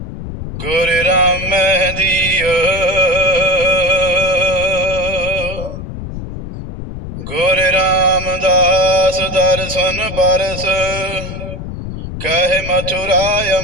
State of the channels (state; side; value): noise; left; rumble, 9 dB below the sound